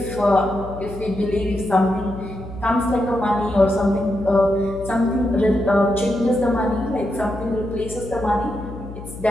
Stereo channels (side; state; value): left; noise; hum, 12 dB below the sound